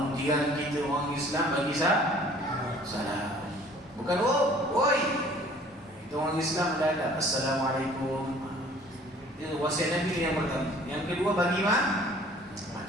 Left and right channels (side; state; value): both; normal; correlation 0.52